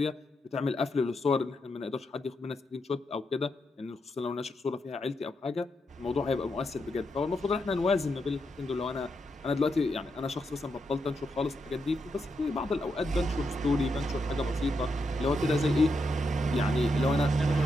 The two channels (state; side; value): normal; both; correlation 0.83